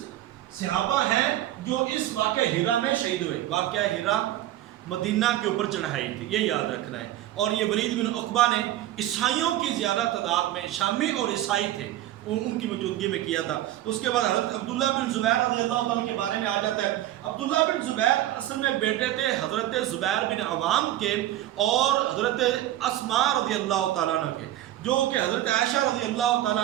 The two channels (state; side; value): quieter; left; 13.8 dB